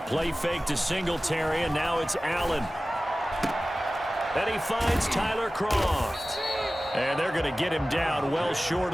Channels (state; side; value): normal; both; correlation 0.96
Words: play fake to Singletary, and now it's Allen. And he finds Tyler Croft. And they're going to get him down well short